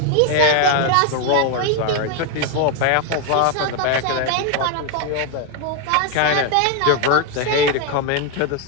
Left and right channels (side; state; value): both; different; correlation 0.01